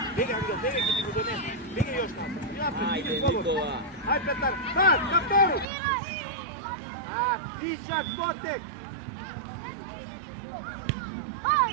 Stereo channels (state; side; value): drops out; left; at 5.7 s